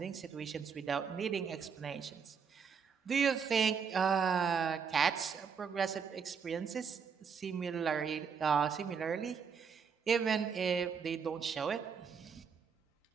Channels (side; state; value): left; quieter; 6.4 dB